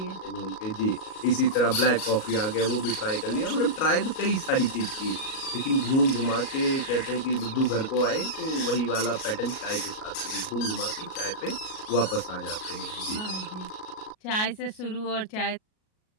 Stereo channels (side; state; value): right; late; 37 ms